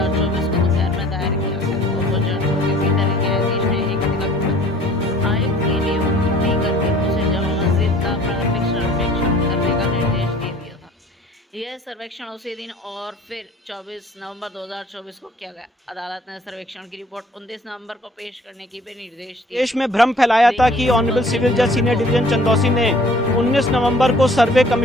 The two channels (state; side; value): normal; both; correlation 0.52